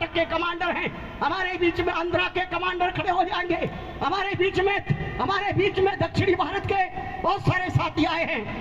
के कमांडर हैं, हमारे बीच में आंध्रा के कमांडर खड़े हो जाएंगे, हमारे बीच में दक्षिणी भारत के बहुत सारे साथी आए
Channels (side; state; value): both; identical; correlation 1.00